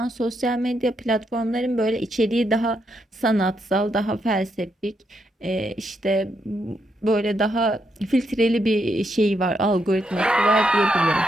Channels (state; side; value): normal; both; correlation 0.80